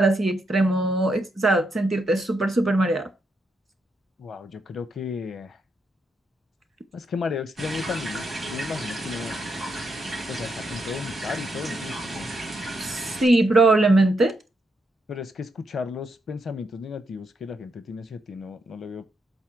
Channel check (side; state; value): both; normal; correlation 0.80